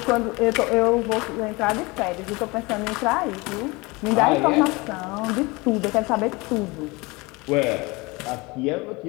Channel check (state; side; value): quieter; right; 24.8 dB